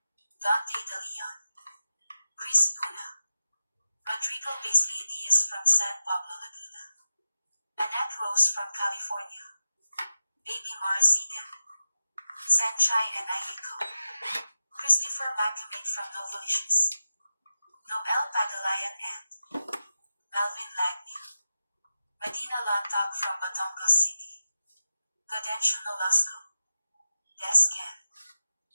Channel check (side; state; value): both; inverted; correlation -0.92